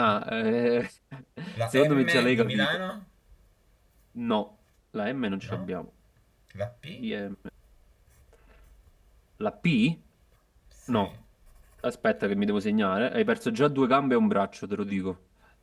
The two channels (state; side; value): identical; both; correlation 1.00